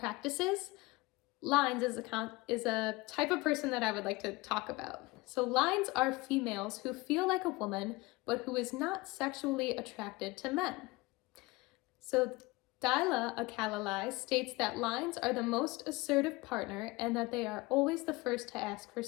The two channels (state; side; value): quieter; right; 22.3 dB